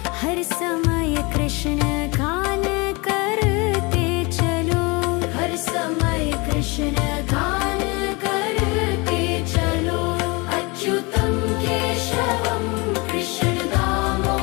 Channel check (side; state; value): right; quieter; 27.2 dB